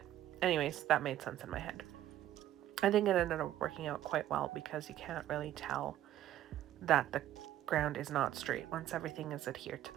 anyways, that made sense in my head. I think it ended up working out quite well because you can't really tell that the ground is not straight once everything is adhered to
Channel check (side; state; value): left; quieter; 12.7 dB